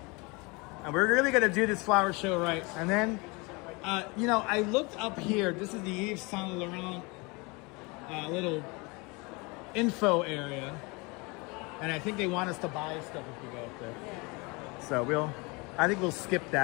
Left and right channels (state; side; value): quieter; right; 27.4 dB